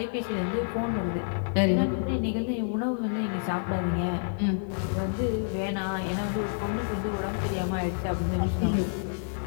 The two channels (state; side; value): silent; right; digital silence